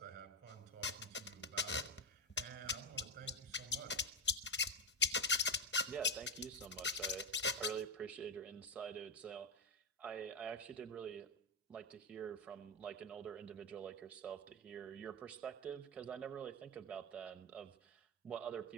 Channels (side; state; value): both; normal; correlation 0.09